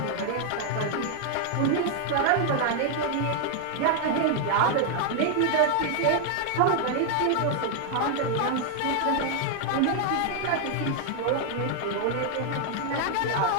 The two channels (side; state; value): both; different; correlation 0.00